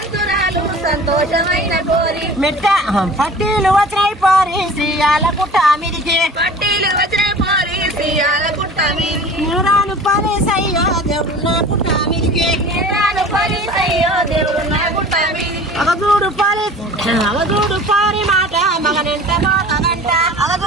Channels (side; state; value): both; normal; correlation 0.42